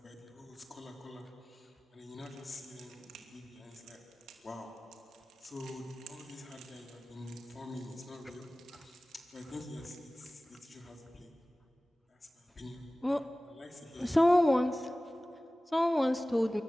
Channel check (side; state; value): both; normal; correlation 0.98